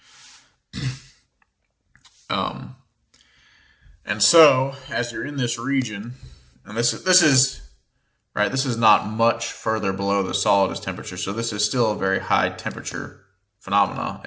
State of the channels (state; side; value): identical; both; correlation 1.00